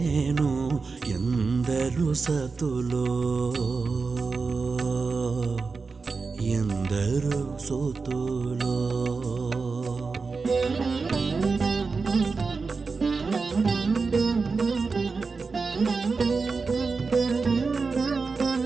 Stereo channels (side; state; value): left; quieter; 4.5 dB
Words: ఎందరు సతులో ఎందరు సుతులో